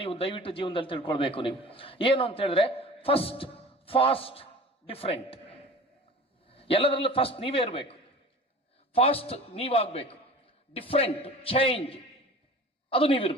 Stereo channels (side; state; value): both; normal; correlation 0.40